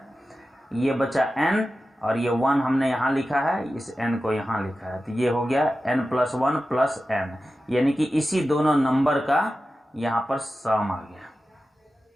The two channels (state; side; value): normal; both; correlation 0.93